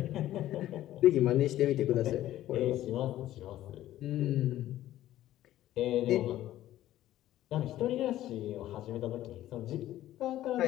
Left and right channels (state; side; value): quieter; right; 13.7 dB